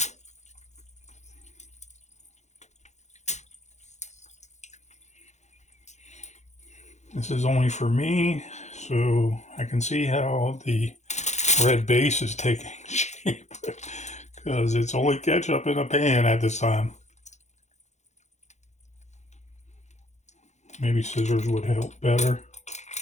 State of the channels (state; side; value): late; right; 0.33 ms